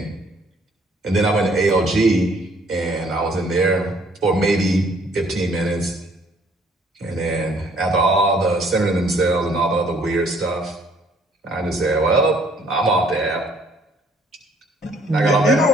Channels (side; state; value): both; normal; correlation 0.62